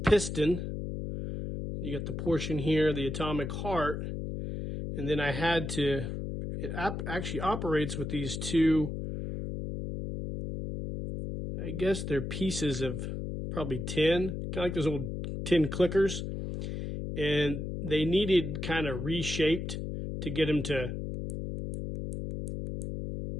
You got the portion here, the atomic heart. And then I had to, it actually operates with these two, I guess they're pieces of probably tin, kind of like those old tin clickers. And they needed kind of reshaped to get them to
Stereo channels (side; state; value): left; noise; hum, 5 dB below the sound